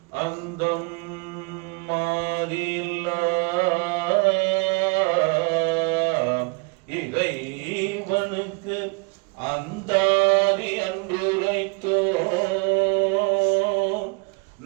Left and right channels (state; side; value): quieter; left; 30.9 dB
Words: அந்தம் மாதில்லா இறைவனுக்கு அந்தாதி அன்றுரைத்தோ